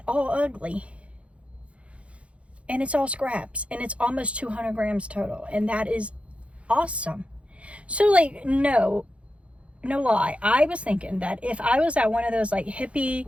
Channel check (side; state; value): left; late; 0.062 ms